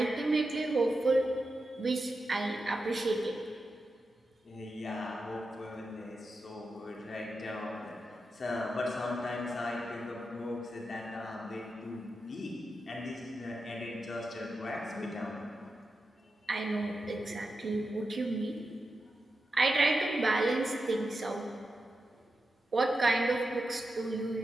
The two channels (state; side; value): normal; both; correlation 0.89